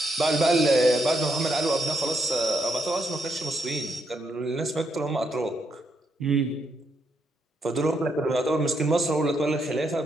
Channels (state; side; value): normal; both; correlation 0.77